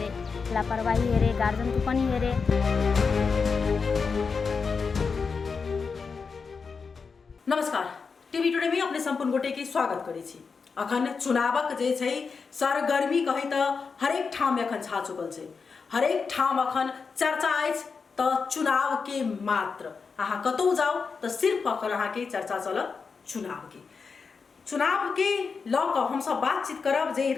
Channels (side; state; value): right; quieter; 5.2 dB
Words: लापरवाही हेरे, गार्जनको पनि हेरे। नमस्कार, टीवी टुडे में अपने संपूर्ण गोटे के स्वागत करे छी। अखन चुनावक जे छै सरगर्मी कही त हरेक ठाम अखन छा चुकल छै। हरेक ठाम अखन चर्चा अछि त चुनाव के मात्र। अहाँ कतौ जाओ त सिर्फ अखन अहाँ के चर्चा चल चुनाव के लक हम सब बातचीत करब जे